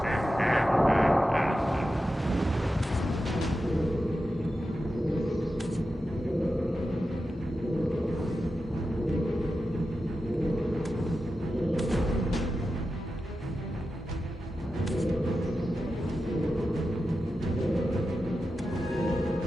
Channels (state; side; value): normal; both; correlation 0.91